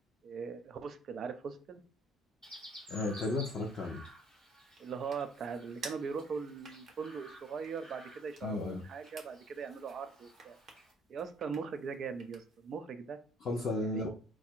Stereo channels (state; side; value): normal; both; correlation 0.59